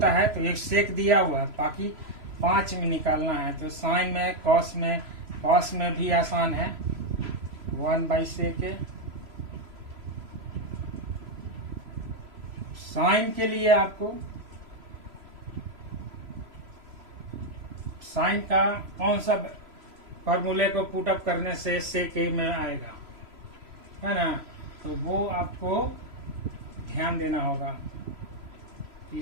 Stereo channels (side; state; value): left; late; 3.0 ms